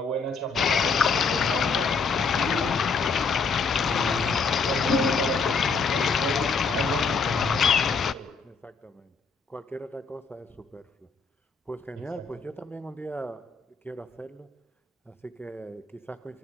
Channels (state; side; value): quieter; right; 4.8 dB